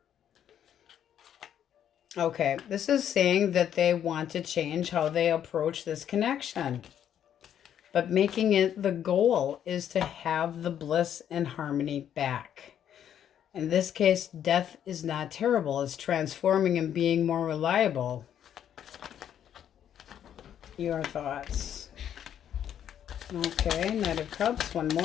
Okay, this is saying that they want to change how they approach this connection. But making it the goal is to have the bliss and harmony back. In this case, death is not terrible. It's transforming and being more reliable. Your thoughts. Okay, Knight of Cups, one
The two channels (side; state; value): right; quieter; 9.8 dB